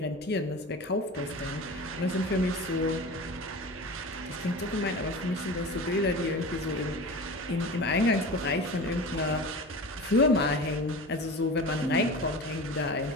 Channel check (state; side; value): normal; both; correlation 0.33